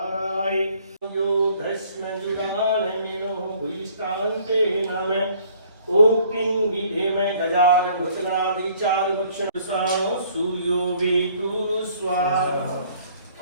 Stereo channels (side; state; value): both; inverted; correlation -0.59